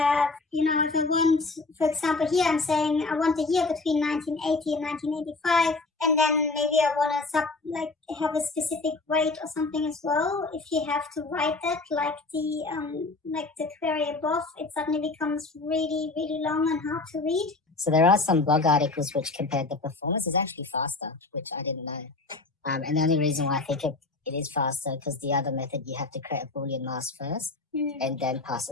if I want, for example, here I'm saying I want the year between 1980 and 1985, and then maybe I want to have a specific weight or something as well. If you have to write that like the query above, it suddenly becomes really, really long and hard to read. So there are some blog articles which compared the performance is actually faster, which I didn't know. And the only reason why I think it is faster because the other method you have to create a Boolean mask first and then pass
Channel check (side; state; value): right; quieter; 3.6 dB